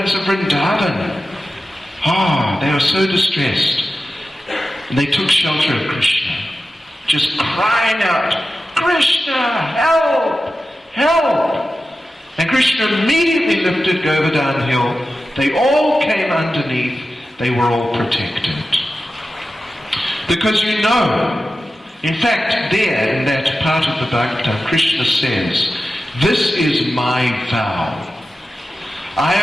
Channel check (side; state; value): both; normal; correlation 0.93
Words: of Vrindavan, they were so distressed. And they took shelter of Krishna, just crying out, Krishna, help, help. And Krishna immediately lifted Govardhan hill. They all came underneath. They were all protected. Because in fact, there in that part of the Bhagavatam, Krishna says, this is my vow. I